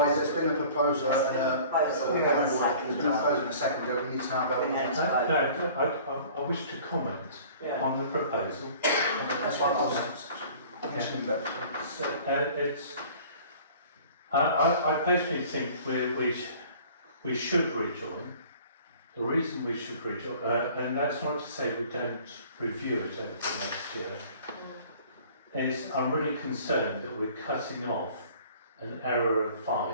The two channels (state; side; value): inverted; both; correlation -0.48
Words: there's been a proposal and Proposal, there's been a proposal and a second go, we need to now vote on it. No, I wish to comment Yeah. on the proposal. That's why I was. I personally think we should rejoin. The reason we should rejoin, and that's not to say we don't review it over the next year, is I'm really concerned that we're cutting off an area of